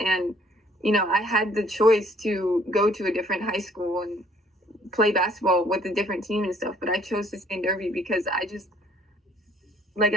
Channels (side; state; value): both; normal; correlation 0.60